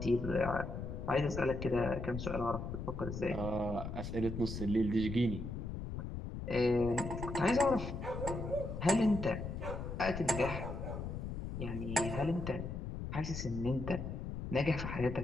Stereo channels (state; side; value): noise; left; rumble, 6 dB below the sound